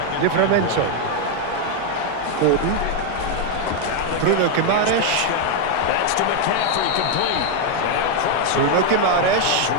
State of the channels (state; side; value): different; both; correlation 0.01